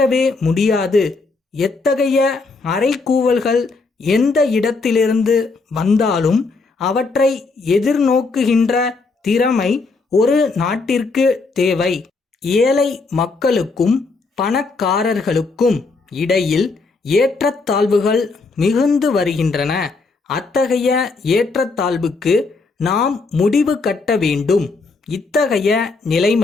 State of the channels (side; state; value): right; quieter; 4.0 dB